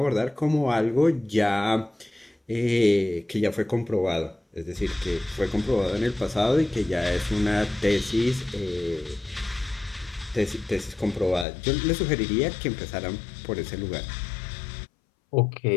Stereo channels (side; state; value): right; drops out; at 11.5 s